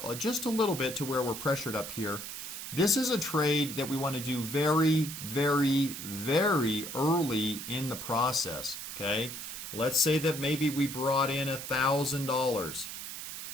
just a little bit to where we're pressured up here. This is a trade that we want to do very, very, very early in the process. Okay, let's say that maybe we brought in $1,000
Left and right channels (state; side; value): noise; right; hiss, 8 dB below the sound